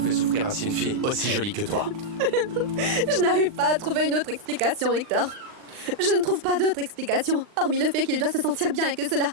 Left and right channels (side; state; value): left; late; 39 ms